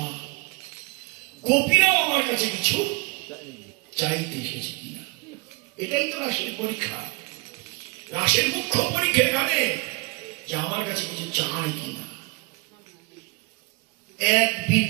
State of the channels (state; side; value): quieter; left; 26.9 dB